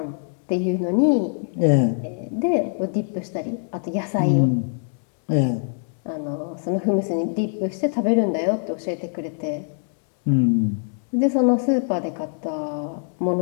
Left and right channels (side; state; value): right; silent; 63 dB below the other